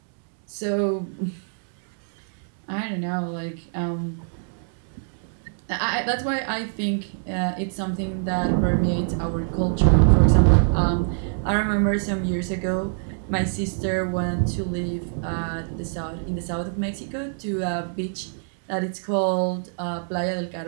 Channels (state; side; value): silent; left; digital silence